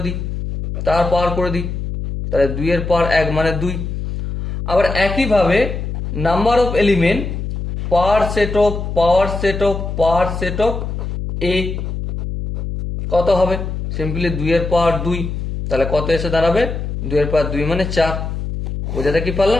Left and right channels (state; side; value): noise; left; hum, 5 dB below the sound